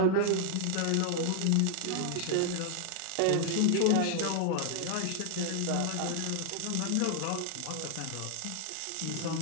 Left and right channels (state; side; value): different; both; correlation 0.00